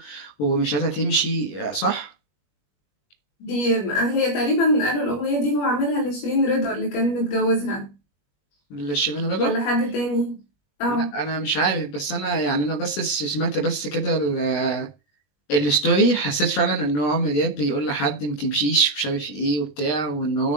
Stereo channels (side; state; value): right; late; 21 ms